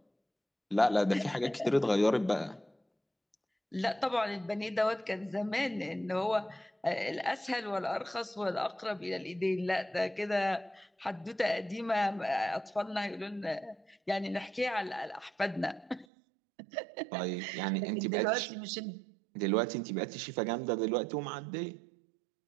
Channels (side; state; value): left; drops out; at 16.1 s